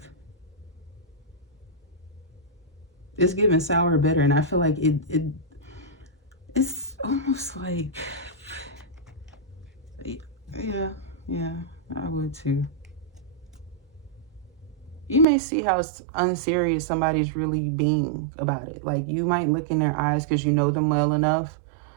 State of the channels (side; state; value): left; drops out; at 15.2 s